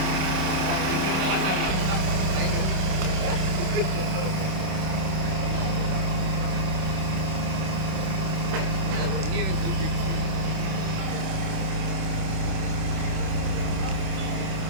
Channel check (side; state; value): left; late; 26 ms